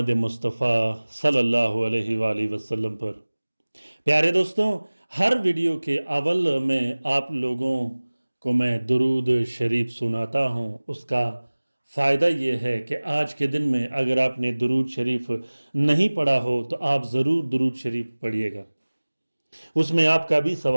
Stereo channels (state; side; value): inverted; both; correlation -1.00